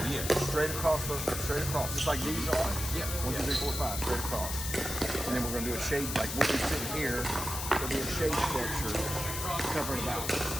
straight across, just like these are. Yeah. 1, 2, 3, 4, 5, straight across. And then we're going to do a shade, like we'll be sitting here, there'll be a shade structure covering about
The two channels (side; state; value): left; noise; hiss, 5 dB below the sound